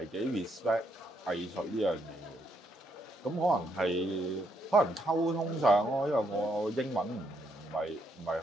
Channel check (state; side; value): normal; both; correlation 0.75